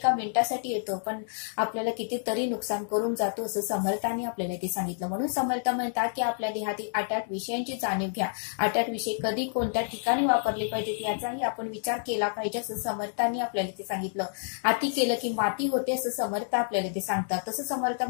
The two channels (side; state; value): right; silent; digital silence